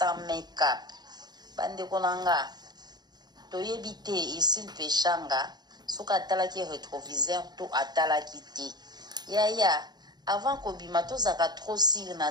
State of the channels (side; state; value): left; late; 0.20 ms